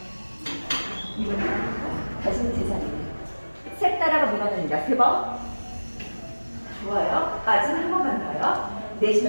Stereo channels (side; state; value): both; inverted; correlation -1.00